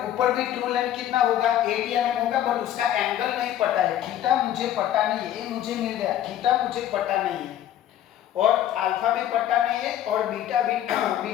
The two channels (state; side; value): quieter; right; 11.6 dB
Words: भी ट्रू लेंथ कितना होगा, 80 mm होगा, बट उसका एंगल नहीं पता है, थीटा मुझे पता नहीं है, ये मुझे मिल गया, थीटा मुझे पता नहीं है, और अल्फा भी पता नहीं है, और बीटा भी